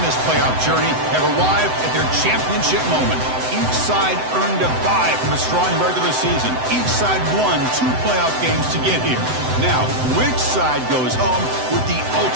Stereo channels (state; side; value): late; left; 7.9 ms